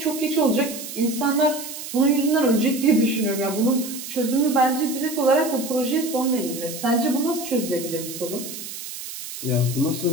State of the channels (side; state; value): right; noise; hiss, 10 dB below the sound